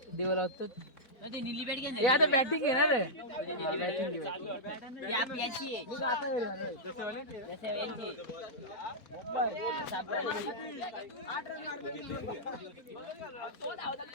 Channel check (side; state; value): right; late; 4.1 ms